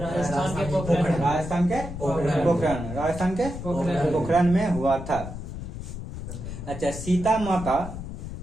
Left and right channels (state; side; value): noise; left; rumble, 8 dB below the sound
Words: के पोखरण। राजस्थान के पोखरण। राजस्थान के पोखरण में हुआ था। अच्छा, सीता माता